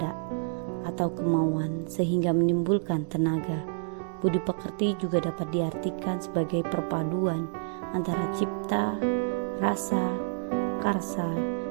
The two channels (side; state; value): left; silent; digital silence